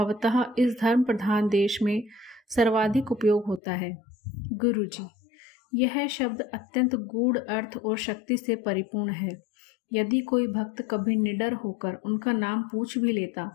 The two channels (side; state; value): right; drops out; at 3.6 s